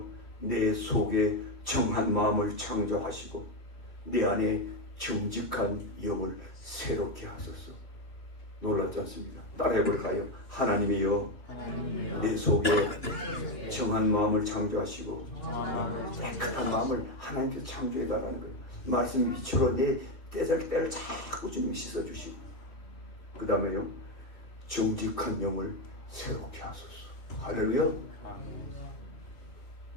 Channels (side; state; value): right; late; 2.7 ms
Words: 내 속에 정한 마음을 창조하시고 내 안에 정직한 영을 새롭게 하소서. 놀랍지 않습니까? 따라해볼까요? 하나님이여, 내 속에 정한 마음을 창조하시고 깨끗한 마음을 하나님께서 창조해달라는 거예요. 말씀 빛으로 내 때를 자꾸 주님이 씻어주시고, 그 다음에요, 정직한 영을 새롭게 하소서. 할렐루야.